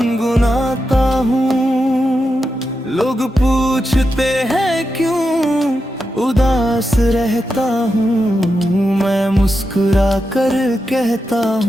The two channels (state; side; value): normal; both; correlation 0.88